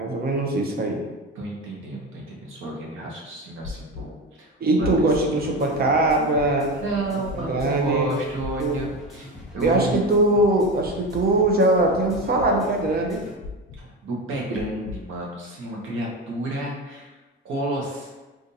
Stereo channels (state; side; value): normal; both; correlation 0.23